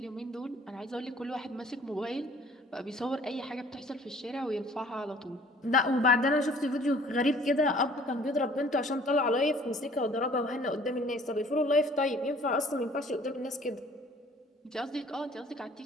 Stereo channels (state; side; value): normal; both; correlation 0.54